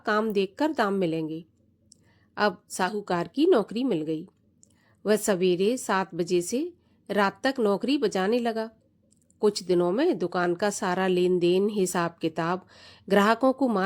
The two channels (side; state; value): both; identical; correlation 1.00